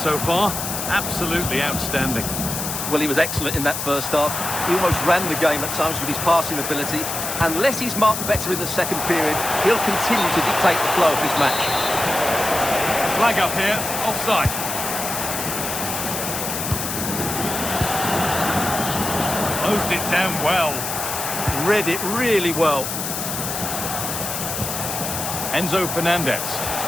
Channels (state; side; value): noise; left; hiss, 4 dB below the sound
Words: far. Absolutely outstanding. Well, he was excellent in that first half. He almost ran the game at times with his passing ability. Unless he's marked better in the second period, he'll continue to dictate the flow of this match. Flag up here, offside. Closed it down well. Read it really well. Enzo Fernandez.